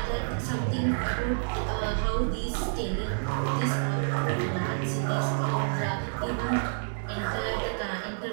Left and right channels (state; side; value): silent; left; 59 dB below the other